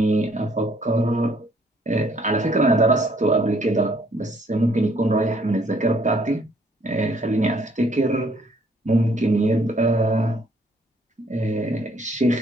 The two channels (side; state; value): both; normal; correlation 0.65